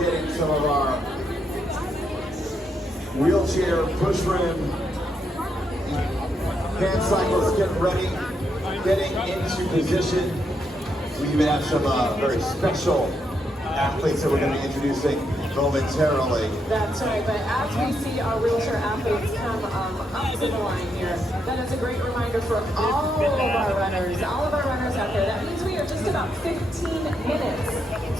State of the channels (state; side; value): normal; both; correlation 0.79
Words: getting some of our wheelchair, push rim, hand cycles getting ready, getting into position. We even have some very special athletes that we're going to be introducing momentarily. That's right, but as we see our wheelchair athletes come up to the line here, that is a great reminder for all of our runners out there. That means we are just about 15